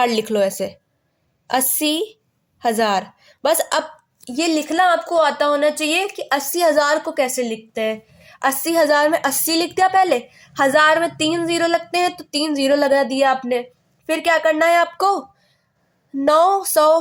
लिख लो, ऐसे 80,000 बस। अब ये लिखना आपको आता होना चाहिए कि 80,000 को कैसे लिखते हैं। 80,000 में 80 लिख दिया पहले, 1000 में 3 जीरो लगते हैं तो 3 जीरो लगा दिया आपने। फिर क्या करना है आपको,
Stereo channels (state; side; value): identical; both; correlation 1.00